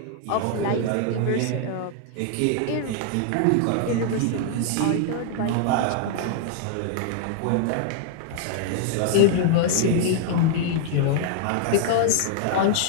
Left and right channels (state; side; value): different; both; correlation -0.01